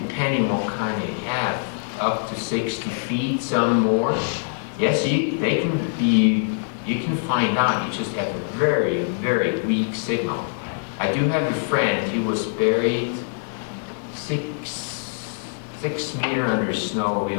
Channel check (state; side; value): silent; right; digital silence